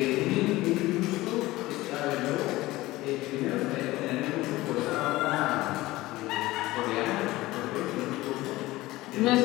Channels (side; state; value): right; quieter; 18.4 dB